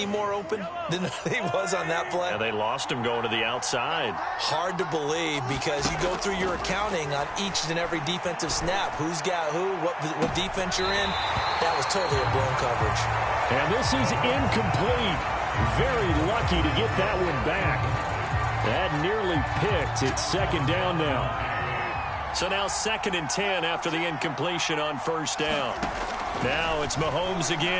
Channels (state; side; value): identical; both; correlation 1.00